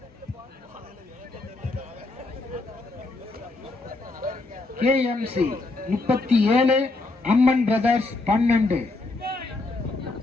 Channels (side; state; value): right; quieter; 3.3 dB